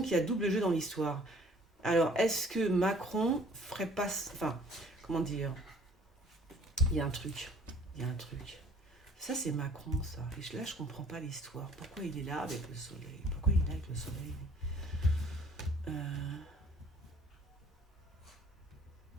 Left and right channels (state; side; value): normal; both; correlation 0.54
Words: qu'il y a double jeu dans l'histoire. Alors, est-ce que Macron ferait pas... Enfin, comment dire? Il y a un truc. Ça, c'est Macron, ça. Et là, je comprends pas l'histoire. Pourquoi il est là avec le soleil?